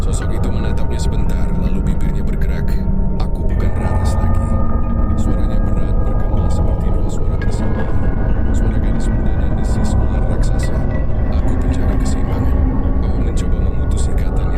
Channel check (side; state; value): both; identical; correlation 1.00